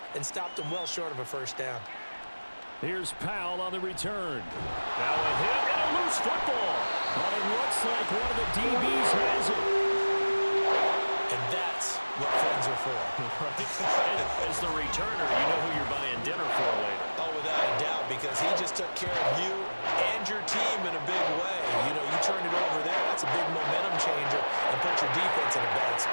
and stopped them well short of a 1st down. Here's Powell on the return. Now a hit and a loose football. But it looks like one of the DBs has it. And that's what friends are for. As the returner, you know who you're buying dinner for later. Oh, without a doubt, because he just took care of you and your team in a big way. You know, you turn it over there, that's a big momentum changer and put your defense in a bad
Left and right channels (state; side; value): inverted; both; correlation -1.00